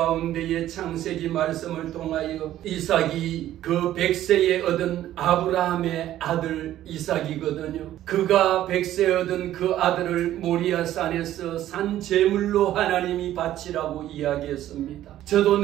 창세기 말씀을 통하여 이삭이 그 100세에 얻은 아브라함의 아들 이삭이거든요. 그가 100세에 얻은 그 아들을 모리아 산에서 산 제물로 하나님이 바치라고 이야기했습니다. 저도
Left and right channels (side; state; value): left; quieter; 13.0 dB